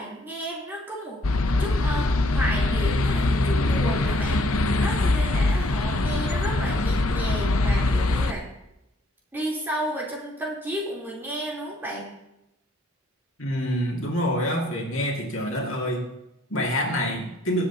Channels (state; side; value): normal; both; correlation 0.66